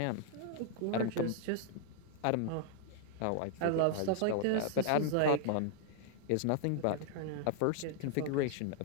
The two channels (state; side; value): different; both; correlation 0.00